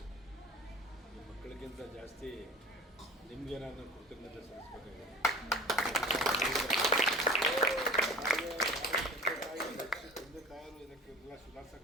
ಈ ಮಕ್ಕಳಿಗಿಂತ ಜಾಸ್ತಿ ನಿಮಗೆ ನಾನು ಕೃತಜ್ಞತೆ ಸಲ್ಲಿಸಬೇಕಾಗಿದೆ. ತಂದೆ ತಾಯರು ಇದಕ್ಕೆಲ್ಲ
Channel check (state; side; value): normal; both; correlation 0.39